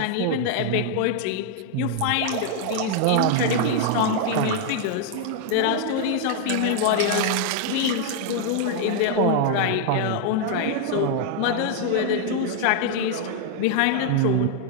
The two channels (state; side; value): different; both; correlation 0.00